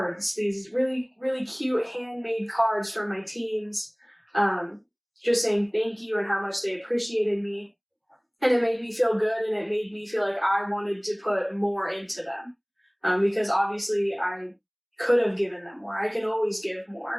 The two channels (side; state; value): both; identical; correlation 1.00